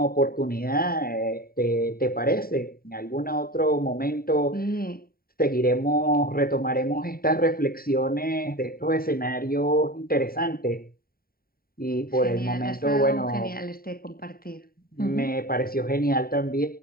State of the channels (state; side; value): late; right; 0.43 ms